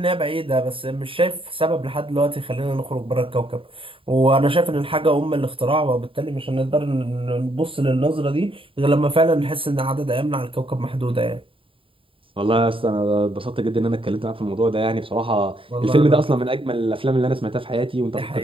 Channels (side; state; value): left; late; 0.26 ms